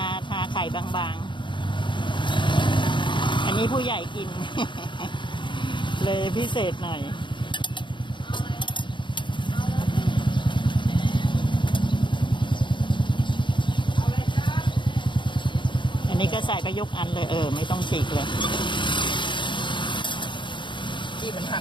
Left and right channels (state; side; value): late; right; 0.23 ms